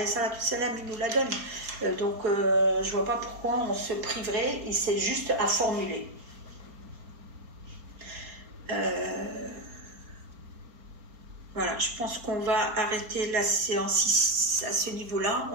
nous la donne. Donc, je ne vois pas pourquoi on se priverait, et c'est juste à formuler. Voilà, je pense qu'on va arrêter la séance à ce niveau-là.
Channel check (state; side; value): late; left; 4.4 ms